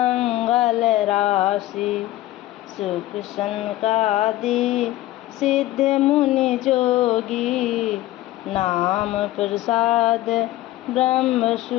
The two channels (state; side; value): quieter; right; 15.9 dB